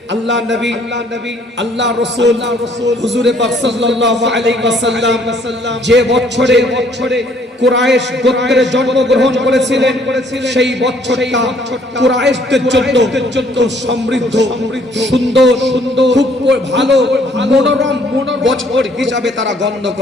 আল্লাহ নবী আল্লাহ রাসূল হুজুরে পাক সাল্লাল্লাহু আলাইহি ওয়াসাল্লাম যে বছরে কুরাইশ গোত্রে জন্মগ্রহণ করেছিলেন সেই বছরটা কুরাইশদের জন্য খুব সমৃদ্ধ সুন্দর খুব ভালো মনোরম বছর হিসাবে তারা গণ্য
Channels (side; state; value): both; normal; correlation 0.62